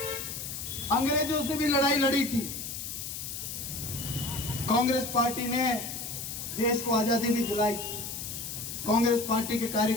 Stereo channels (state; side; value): noise; left; hiss, 7 dB below the sound